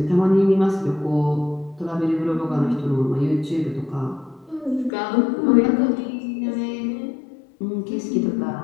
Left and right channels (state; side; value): drops out; right; at 4.9 s